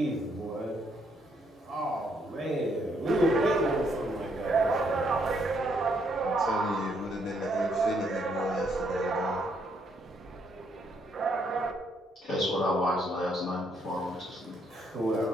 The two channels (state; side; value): normal; both; correlation 0.72